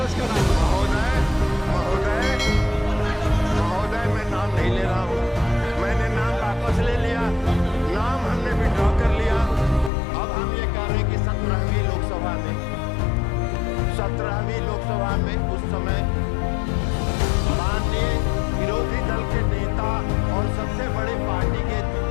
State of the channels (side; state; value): right; drops out; at 9.9 s